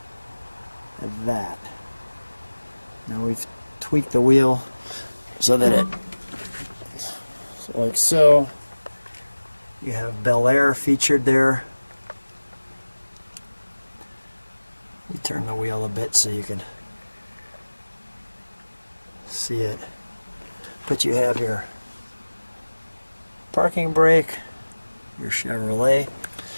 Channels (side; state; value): both; inverted; correlation -1.00